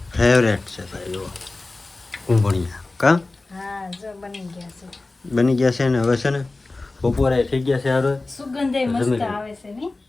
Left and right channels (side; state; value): right; quieter; 3.3 dB